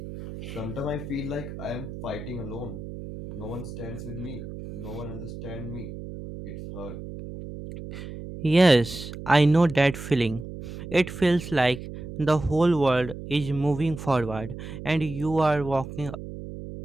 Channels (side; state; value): right; noise; hum, 10 dB below the sound